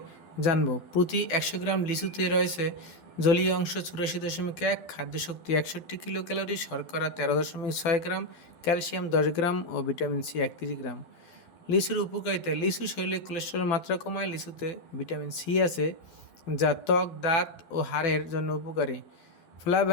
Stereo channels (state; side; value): late; right; 12 ms